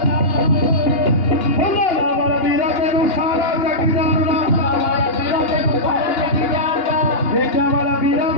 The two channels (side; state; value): right; late; 2.8 ms